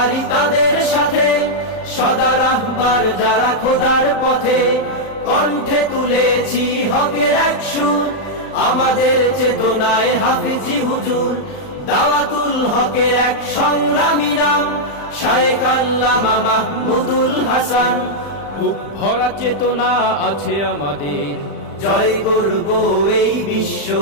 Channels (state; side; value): late; right; 35 ms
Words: তাদের সাথে, সদা রাহবার যারা খোদার পথে। কণ্ঠে তুলেছি হকের এক সুর, আমাদের চেতনায় হাফিজি হুজুর। দাওয়াতুল হকের এক সংগ্রামী নাম, শায়েখ আল্লামা মাহমুদুল হাসান। বুক ভরা চেতনা আছে আমাদের, জয় করব এই বিশ্ব,